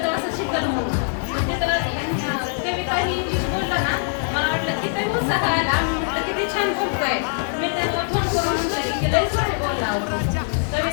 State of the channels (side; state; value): right; silent; digital silence